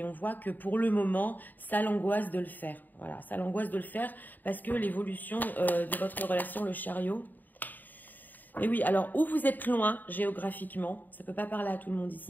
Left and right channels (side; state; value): right; late; 0.087 ms